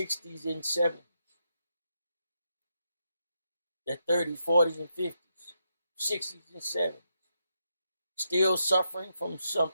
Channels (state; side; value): inverted; both; correlation -0.82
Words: and 70s, their 30s, 40s, and 50s, 60s and 70s, still suffering from